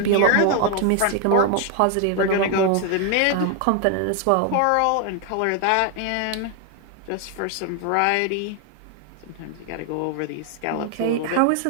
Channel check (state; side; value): different; both; correlation 0.00